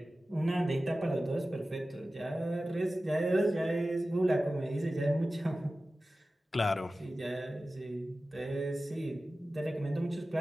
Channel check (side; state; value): both; normal; correlation 0.95